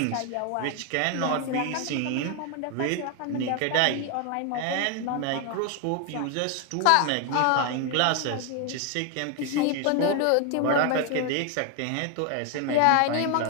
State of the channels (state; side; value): different; both; correlation 0.01